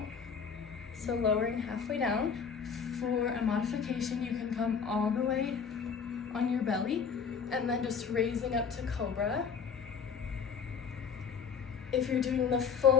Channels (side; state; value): right; quieter; 6.4 dB